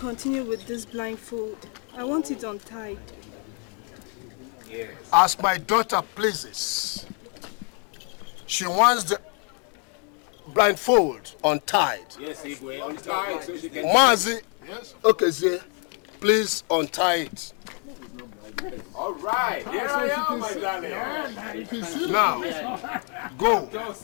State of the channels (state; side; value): quieter; right; 39.8 dB